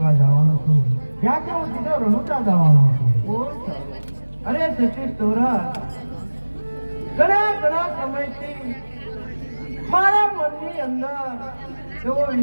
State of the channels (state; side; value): inverted; both; correlation -1.00